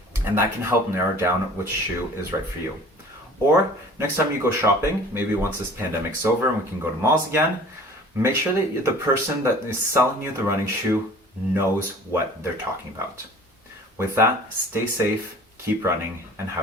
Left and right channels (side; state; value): both; normal; correlation 0.46